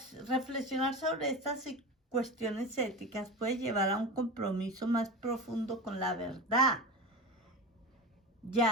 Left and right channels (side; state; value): both; normal; correlation 0.27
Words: Reflexionar sobre estas cuestiones éticas puede llevar a un compromiso más profundo con la verdad.